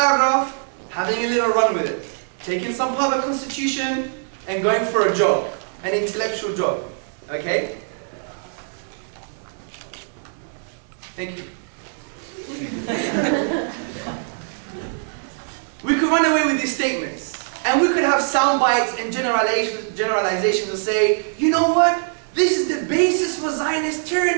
having a little run with it, taking some part of the Constitution and going for a jog, an intellectual jog, okay? Thank you. We could run away with these statements, and we could have sound bites and generalizations and say, you know what? This is the basis for Zionist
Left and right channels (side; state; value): left; silent; 64 dB below the other